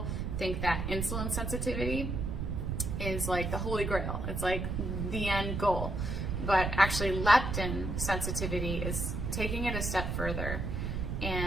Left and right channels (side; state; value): right; noise; rumble, 2 dB below the sound